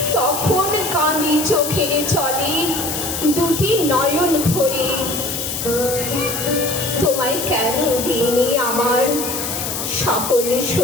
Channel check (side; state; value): left; noise; hiss, 4 dB below the sound